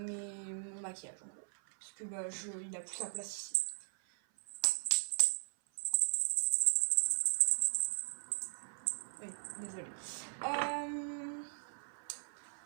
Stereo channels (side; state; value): left; silent; 52 dB below the other